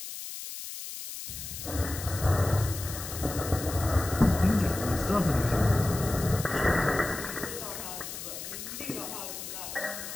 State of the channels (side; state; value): left; noise; hiss, 9 dB below the sound